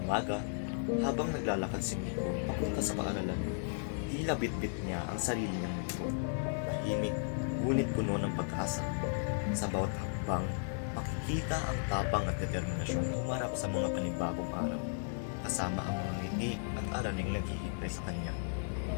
umaga, habang naglalakad si Miko papunta sa paaralan, tila bitbit niya ang sarili niyang mundo. Tahimik, ngunit puno ng pag-asa. Sa bawat hakbang, makikita ang tapang at determinasyong humarap sa mga panibagong araw, kasama ang mga ngiti at araling naghihintay sa kanya.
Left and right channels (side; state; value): right; silent; digital silence